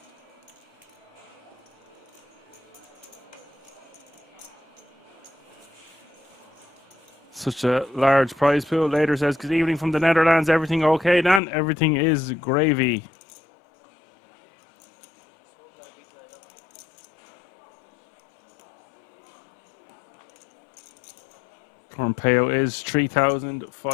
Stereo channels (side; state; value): right; drops out; at 11.4 s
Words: Such a large prize pool. Later says, good evening from the Netherlands. Everything okay, Dan? Everything is gravy. Current payout is